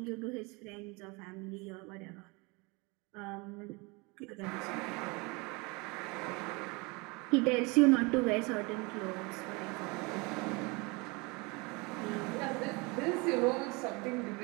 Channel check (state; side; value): quieter; left; 27.5 dB